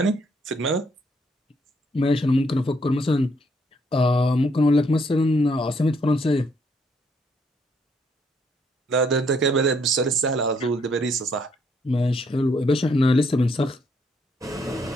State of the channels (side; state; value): both; normal; correlation 0.70